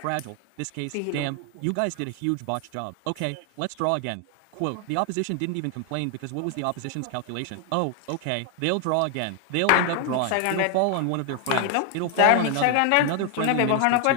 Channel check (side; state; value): both; different; correlation 0.00